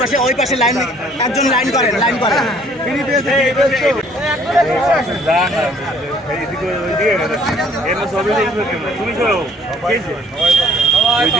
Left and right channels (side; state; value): both; normal; correlation 0.59